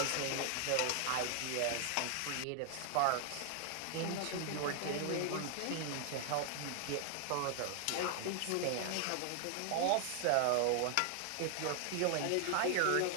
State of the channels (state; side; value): different; both; correlation 0.00